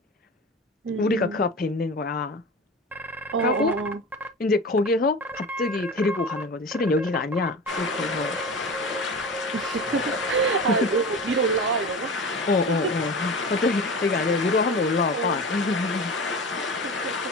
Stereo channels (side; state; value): both; normal; correlation 0.31